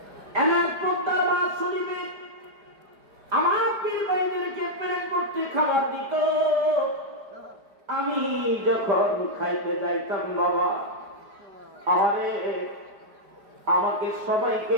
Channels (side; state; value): left; late; 5.0 ms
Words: এনার পদ্মার বাস শরীফে আমার পীর ভাইদেরকে প্রেম করতে খাবার দিত। আমি যখন খাইতে যাইতাম, বাবা আমাকে সবাইকে